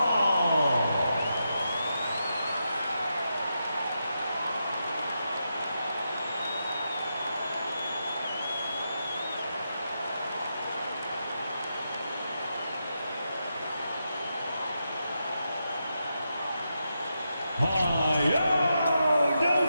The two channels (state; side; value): inverted; both; correlation -0.86